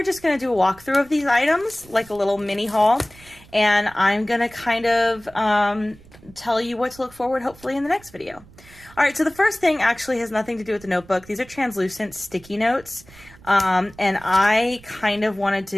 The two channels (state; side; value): noise; right; rumble, 23 dB below the sound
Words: just going to do a walkthrough of these items, like a little mini haul. And I'm going to kind of tell you what to look forward, hopefully, in the next video. All right, so the first thing actually has nothing to do with the notebook. These are translucent sticky notes. And I kind of wanted